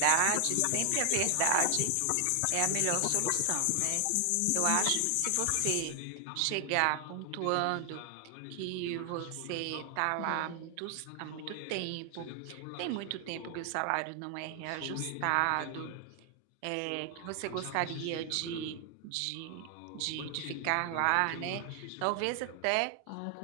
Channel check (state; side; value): different; both; correlation 0.00